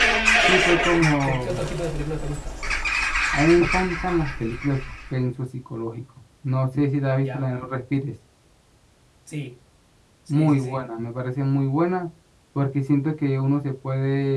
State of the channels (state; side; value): identical; both; correlation 1.00